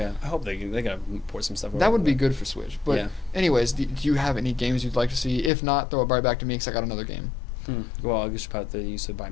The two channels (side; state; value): right; drops out; at 5.5 s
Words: I hope they gotta port some stuff over. That would be good for Switch. But anyways, do you have any games you'd like to see? If not, throw it right back to me because I got another game. Well, I guess about you said buy